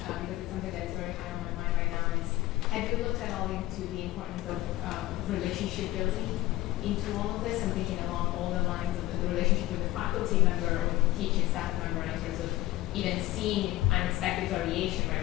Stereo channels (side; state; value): right; quieter; 17.0 dB